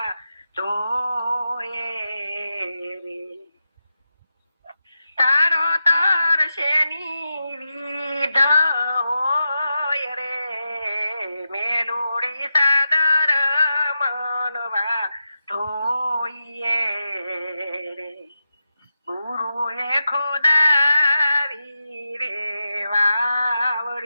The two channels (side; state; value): both; inverted; correlation -0.89